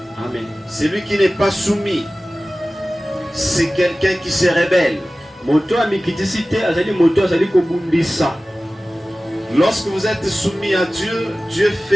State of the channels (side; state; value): both; normal; correlation 0.97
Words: Amen. Celui qui n'est pas soumis, c'est quelqu'un qui se rebelle. Lorsque vous êtes soumis à Dieu, Dieu